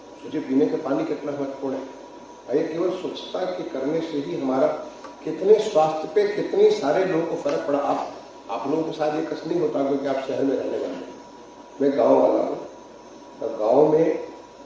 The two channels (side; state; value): both; identical; correlation 1.00